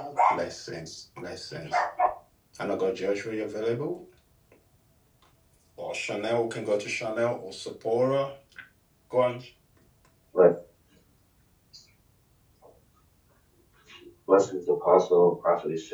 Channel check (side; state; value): both; identical; correlation 1.00